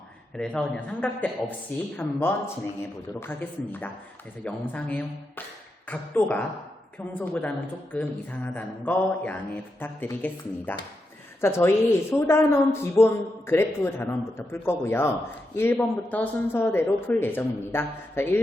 그래서 그냥 삼각대 없이 한번 진행해 보도록 하겠습니다. 그래서 영상의 각도가 평소보다는 조금 이상하다는 거 양해 부탁드리겠습니다. 자, 저희 소단원 기본 그래프 단원부터 풀 거고요. 1번부터 순서대로 풀 예정입니다. 자,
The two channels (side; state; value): both; normal; correlation 0.86